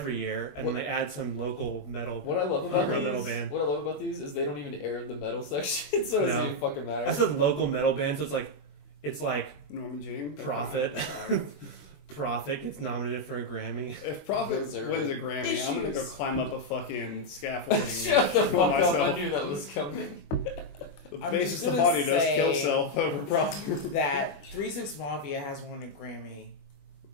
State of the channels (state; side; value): late; right; 21 ms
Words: year, and then they add some local metal. What I love about local these, metal band. what I love about these is they don't even air the metal section, so it doesn't No. even fucking matter. I said local metal band, so it's like Norman Jean. Prophet. Prophet gets nominated for a Grammy. If Prophet Those are wins a Grammy, I'm gonna go issues. climb up a fucking scaffolding. Shut the and fuck kill up! I myself. knew that was coming. The I'm bassist just of the gonna body does say- kill self over Prophet. That 3-6 Mafia has won a Grammy,